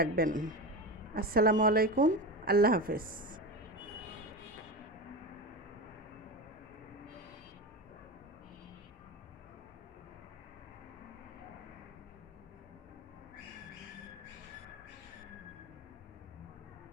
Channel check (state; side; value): normal; both; correlation 0.23